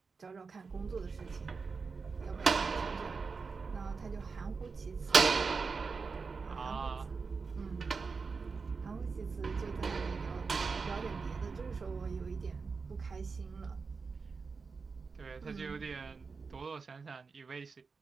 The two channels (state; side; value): quieter; left; 4.8 dB